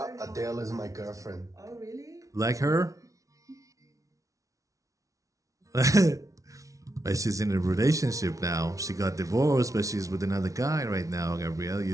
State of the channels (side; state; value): left; late; 0.16 ms